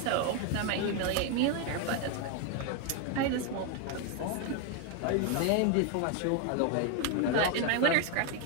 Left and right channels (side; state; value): both; different; correlation 0.01